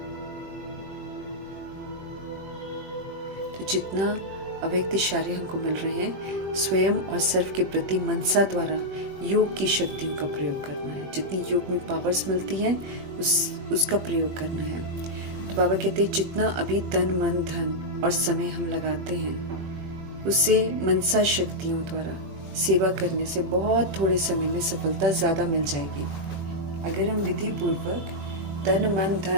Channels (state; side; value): late; left; 21 ms